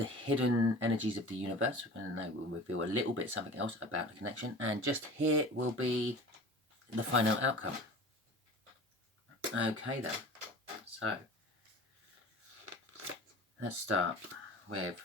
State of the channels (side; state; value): both; normal; correlation 0.39